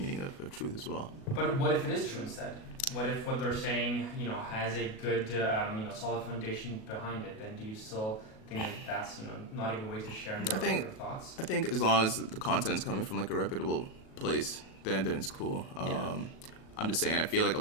of truth as well. But what if it is true instead? What if what they're saying, has a good, solid foundation behind it? Then do you still think that that's, not a good way to share your thoughts? I think as long as the content's coming from a reputable place, then it's cool. I'm just saying, I feel a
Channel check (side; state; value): right; late; 37 ms